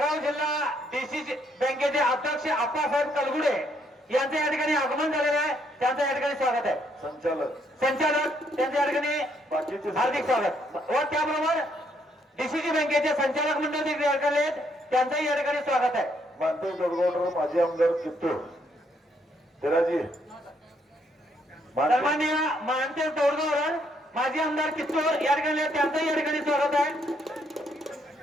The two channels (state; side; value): normal; both; correlation 0.72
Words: जिल्हा डीसीसी बँकेचे अध्यक्ष आप्पासाहेब कलगुडे यांचं या ठिकाणी आगमन झालेलं आहे. त्यांचं या ठिकाणी स्वागत आहे. संचालक त्यांचं या ठिकाणी हार्दिक स्वागत व त्याबरोबर डीसीसी बँकेचे संचालक मंडळ देखील या ठिकाणी आहेत. त्यांचंही या ठिकाणी स्वागत आहे. मानते गडगोडर माजी आमदार कित्तूर तेराजी सन्माननीय मानते तोडगावकर माजी आमदार कित्तूर या ठिकाणी त्यांचंही या ठिकाणी स्वागत आहे.